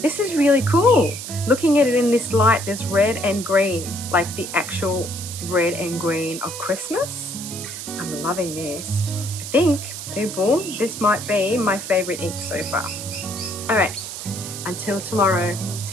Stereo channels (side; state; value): right; noise; hiss, 9 dB below the sound